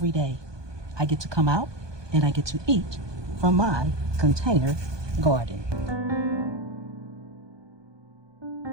day. I get to come out and I get to eat from my container garden.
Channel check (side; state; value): left; late; 1.2 ms